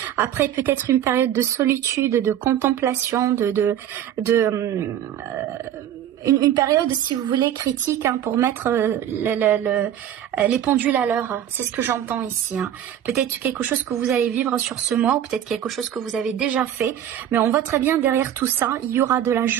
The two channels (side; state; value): left; quieter; 10.6 dB